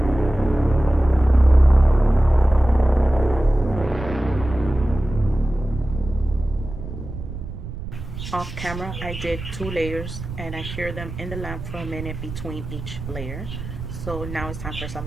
Off camera, I did 2 layers and I cured them in the lamp for a minute between each layer. So now it's time for some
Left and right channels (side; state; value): right; noise; rumble, 10 dB below the sound